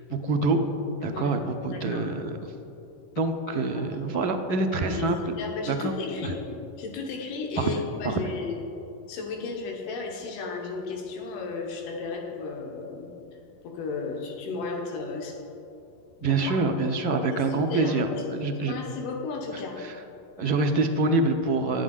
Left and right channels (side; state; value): right; late; 11 ms